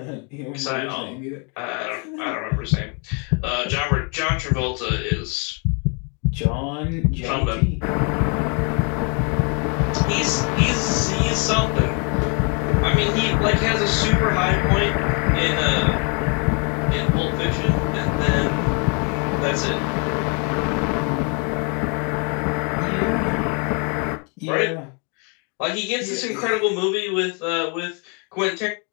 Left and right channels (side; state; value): right; quieter; 36.8 dB